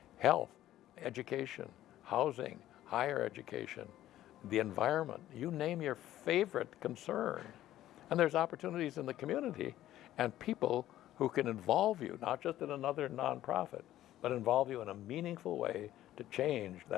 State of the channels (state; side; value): quieter; right; 13.5 dB